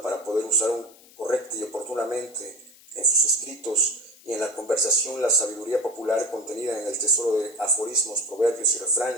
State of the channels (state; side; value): noise; left; hiss, 24 dB below the sound